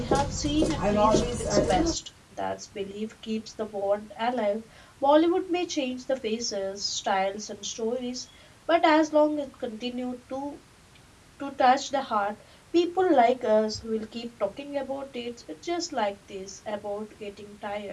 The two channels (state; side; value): identical; both; correlation 1.00